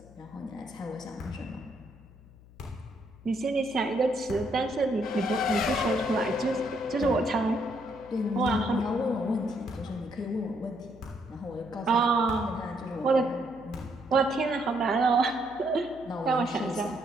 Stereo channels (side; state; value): left; noise; hum, 23 dB below the sound